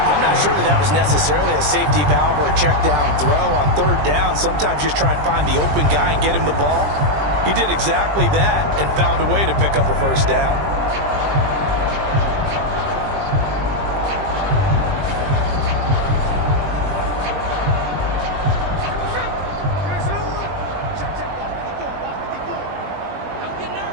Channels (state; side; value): late; left; 20 ms